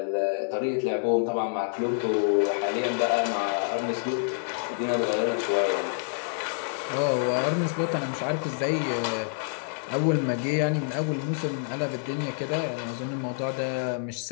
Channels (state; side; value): silent; right; digital silence